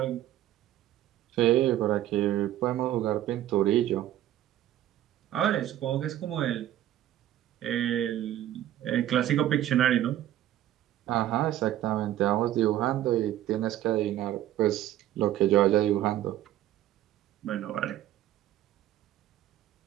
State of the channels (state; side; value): quieter; left; 12.9 dB